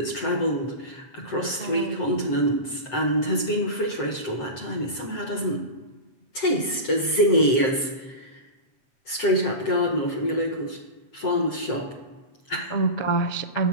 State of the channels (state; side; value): late; right; 7.7 ms